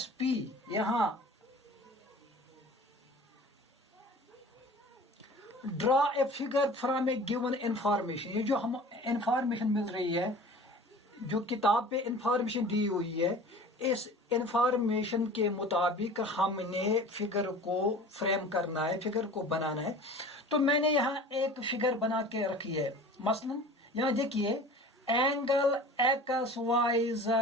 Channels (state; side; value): normal; both; correlation 0.41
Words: पी। यहां draw a figure from A given information. ये जो हम इंफॉर्मेशन मिल रही है, जो किताब पे इंफॉर्मेशन दी हुई है, इस इंफॉर्मेशन के मुताबिक हमने फिगर को फ्रेम करना है, फिगर को बनाना है। तो मैंने यहाँ एक फिगर बना के रखी है। मसलन यहाँ देखिए, angle X Y